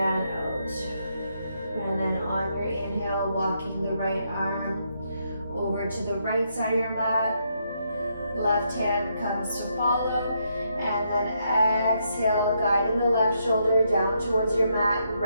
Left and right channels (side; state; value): both; inverted; correlation -0.77